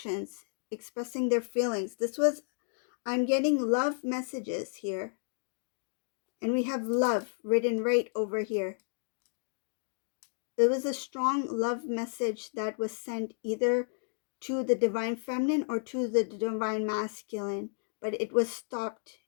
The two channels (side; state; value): right; silent; digital silence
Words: expressing their feelings. I'm getting love messages here. And we have love written right over here. There was a strong love message that was sent either to the divine feminine or to the divine masculine, but it was stopped.